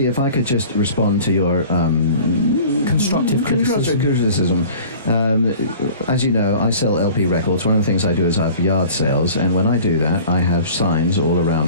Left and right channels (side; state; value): both; inverted; correlation -0.45